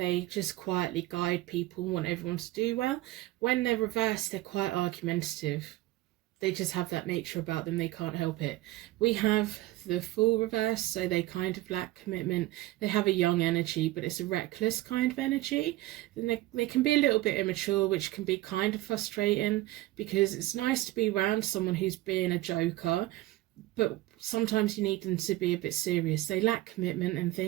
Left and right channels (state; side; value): quieter; left; 17.6 dB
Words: just quietly guide people and want everyone to do well. When they're reversed, they're quite argumentative. They just have that nature about them, they can't help it. We have the Fool reversed, so they kind of lack commitment. They have a young energy, but it's a reckless kind of energy. Then they can be a little bit immature, which can be kind of frustrating, because it's nice to be around someone who's being a joker, but sometimes you need them to be a bit serious. They lack commitment and